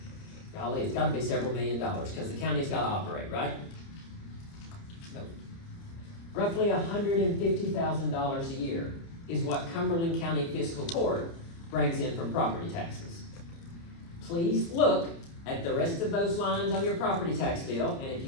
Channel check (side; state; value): right; late; 30 ms